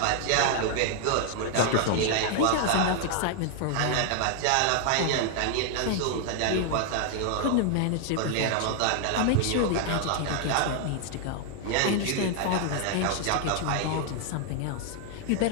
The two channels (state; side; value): different; both; correlation 0.00